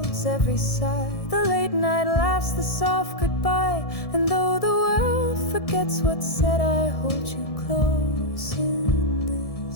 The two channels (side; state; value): right; late; 1.7 ms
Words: every sigh, the late night laughs, the soft goodbye. And though the world forgets what's said, I hold you close in